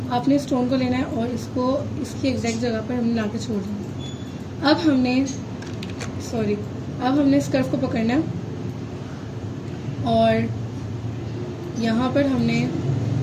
आपने स्टोन को लेना है और इसको इसकी एग्जैक्ट जगह पर हमने ला के छोड़ देना। अब हमने इस कर्व को पकड़ना है और यहाँ पर हमने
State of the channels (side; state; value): both; identical; correlation 1.00